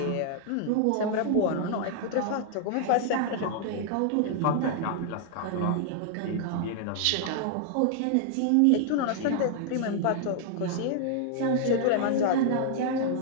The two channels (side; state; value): both; different; correlation 0.00